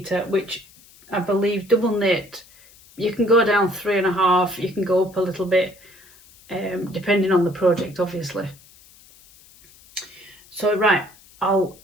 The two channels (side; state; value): left; noise; hiss, 25 dB below the sound